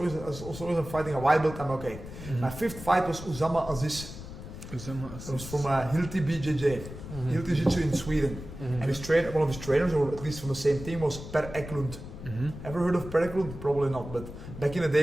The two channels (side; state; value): left; noise; rumble, 11 dB below the sound